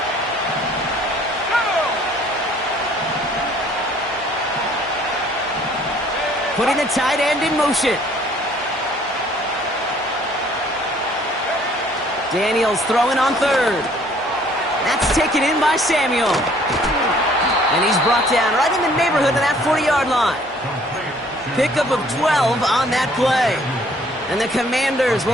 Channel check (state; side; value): normal; both; correlation 0.58